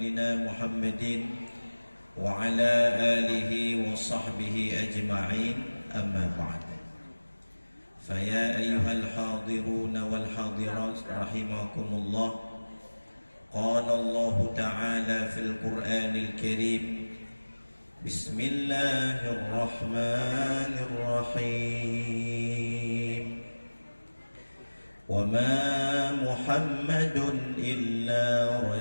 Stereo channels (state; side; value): inverted; both; correlation -1.00